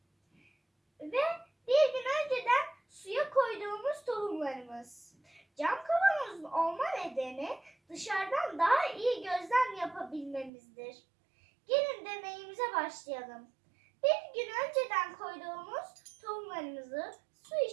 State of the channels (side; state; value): left; drops out; at 10.5 s